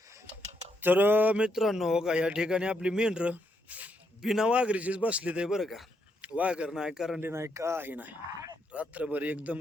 तर मित्रांनो हो का या ठिकाणी आपली मेंढर बिना वाघरीचीच बसली ते बरं का. वाघर नाही करंडी नाही काही नाही. रात्रभर एकदम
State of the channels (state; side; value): normal; both; correlation 0.78